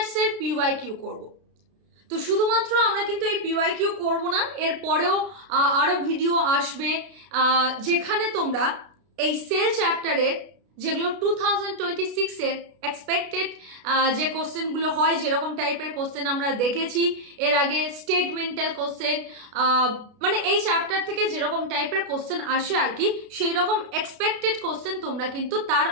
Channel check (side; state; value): left; late; 32 ms